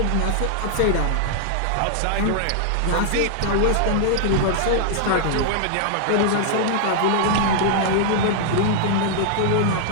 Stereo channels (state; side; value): different; both; correlation -0.01